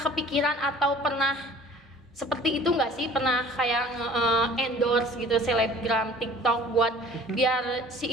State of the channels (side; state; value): both; normal; correlation 0.48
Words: kepikiran atau pernah seperti itu nggak sih? Pernah kayak endorse gitu selebgram TikTok buat biar si